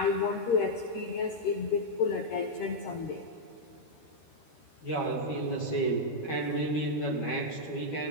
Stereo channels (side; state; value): right; late; 13 ms